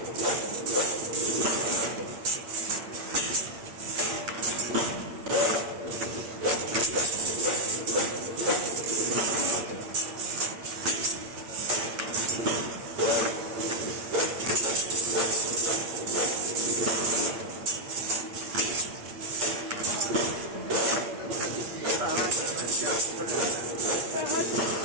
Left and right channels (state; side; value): late; left; 8.7 ms